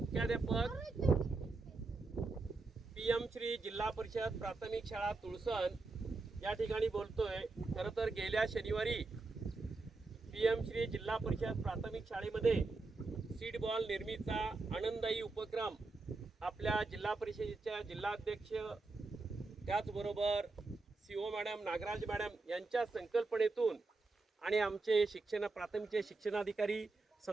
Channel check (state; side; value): quieter; left; 3.6 dB